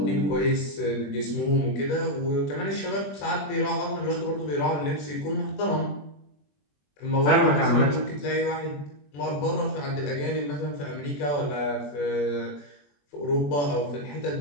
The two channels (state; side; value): late; right; 21 ms